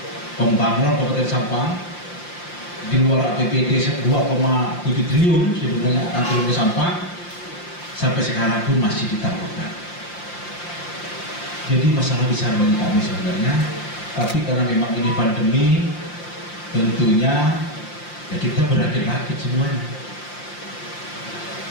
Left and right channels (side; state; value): right; late; 5.7 ms